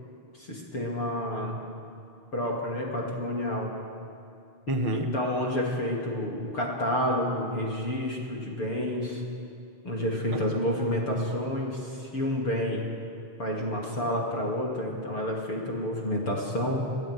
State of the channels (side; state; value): right; late; 6.8 ms